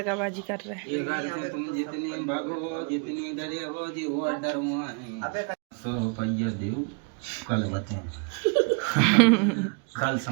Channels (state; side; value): quieter; left; 36.0 dB